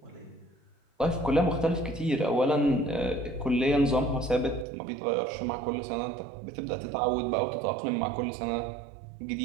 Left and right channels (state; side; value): drops out; left; at 4.7 s